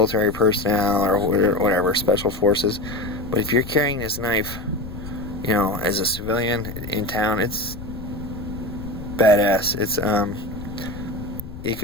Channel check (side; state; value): left; noise; rumble, 12 dB below the sound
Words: personnel or whatever, special forces. But if you're carrying this knife, as a civilian in town, it's badass. It's it